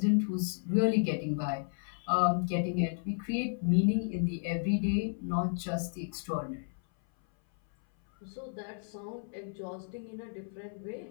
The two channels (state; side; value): silent; right; 56 dB below the other